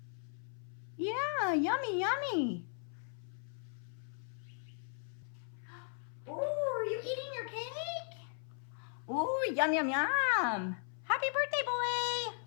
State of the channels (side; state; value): right; silent; 53 dB below the other